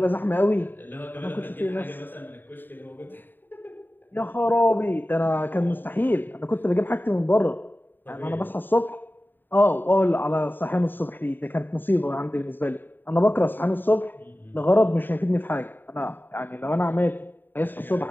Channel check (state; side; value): late; right; 0.092 ms